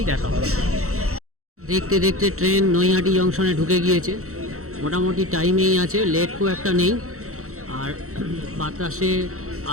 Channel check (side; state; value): left; late; 0.64 ms